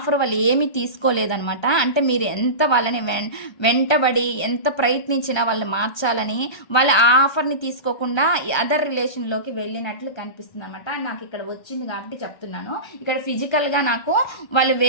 వాళ్ళు ఏమీ తీసుకోలేదనమాట. అంటే మీరు ఎంత వాళ్ళని వెంటబడి ఎంత ప్రయత్నించినా వాళ్ళు మార్చాలని వాళ్ళ ఆ ఆఫర్ని తీసుకోకుండా అదర్ రిలేషన్లోకి వెళ్ళినట్లు కనిపిస్తుంది అనమాట. నాకు ఇక్కడ వచ్చింది కాబట్టి చెప్తున్నాను. ఇక్కడ ఫిజికల్గా నాకు వాళ్ళు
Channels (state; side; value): late; right; 1.2 ms